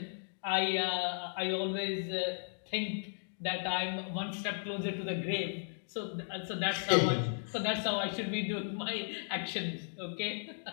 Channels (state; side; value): silent; right; digital silence